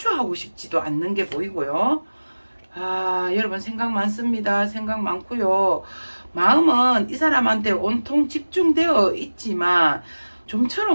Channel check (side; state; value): both; inverted; correlation -1.00